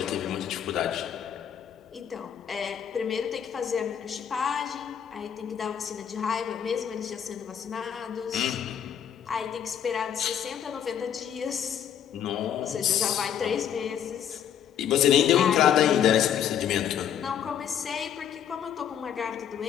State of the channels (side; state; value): right; quieter; 9.1 dB